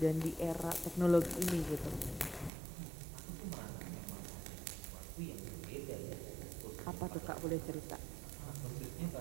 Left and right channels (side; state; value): left; drops out; at 2.5 s